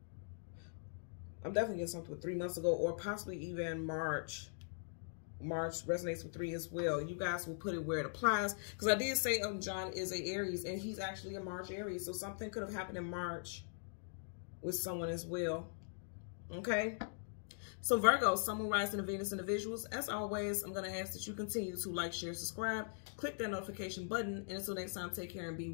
I'm definitely getting something with 3 months ago, or possibly even March. March resonates with 3 as well. You guys will put it where it applies, because I did say John is a Aries, and he's actually a March Aries. So something could have happened in March with someone as well. Okay. So Virgo, Sun, Moon, Rising, and Venus individuals, as always, I'm going to ask that you continue to like, share, subscribe, click that notification button, and until next time, take care and be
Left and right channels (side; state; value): right; silent; digital silence